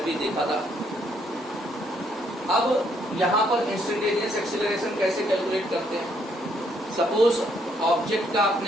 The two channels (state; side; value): normal; both; correlation 0.71